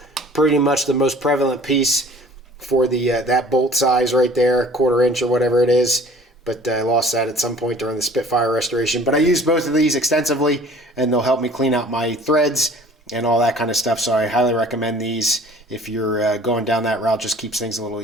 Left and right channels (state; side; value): normal; both; correlation 0.50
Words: pretty much the most prevalent piece for the that bolt size right there, 1/4 inch or whatever it is. But I lost that at some point during the Spitfire restoration. But I use both of these extensively, and they'll help me clean out my threads and all that kind of stuff. So I highly recommend these if you're going down that route. Just keeps things a little